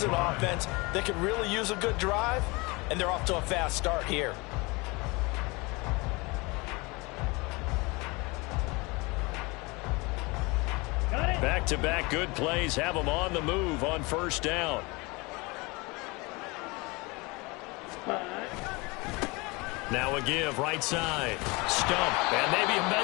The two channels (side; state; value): right; quieter; 25.8 dB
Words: an offense that could really use a good drive, and they're off to a fast start here. Back-to-back good plays have them on the move on 1st down. Now a give, right side. Stump, and maybe a